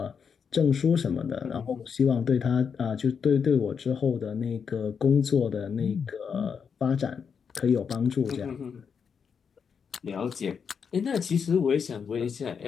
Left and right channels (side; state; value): right; quieter; 6.5 dB